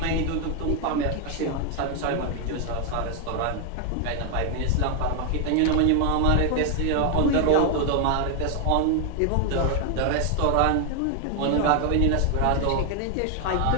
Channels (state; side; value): different; both; correlation 0.00